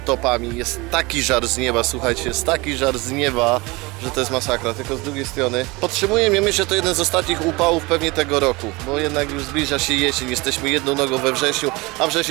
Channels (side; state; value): left; quieter; 24.0 dB